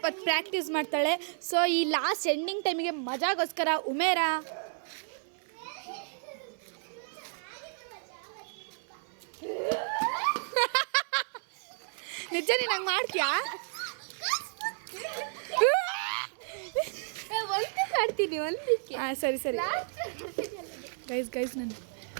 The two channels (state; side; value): silent; left; 56 dB below the other